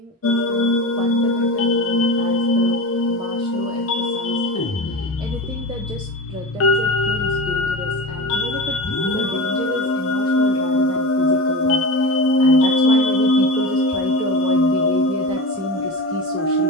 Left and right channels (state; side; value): normal; both; correlation 0.27